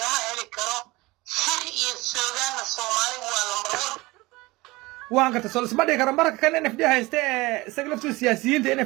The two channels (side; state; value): left; quieter; 21.7 dB